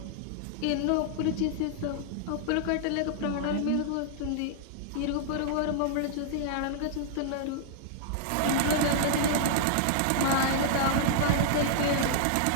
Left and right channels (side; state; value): both; different; correlation -0.01